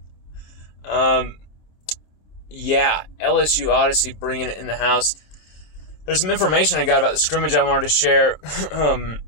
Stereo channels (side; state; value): right; late; 27 ms